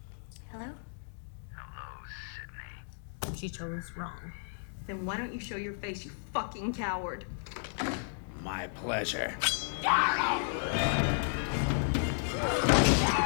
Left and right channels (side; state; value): right; silent; 56 dB below the other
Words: Hello? She chose wrong. Then why don't you show your face, you fucking coward? My pleasure.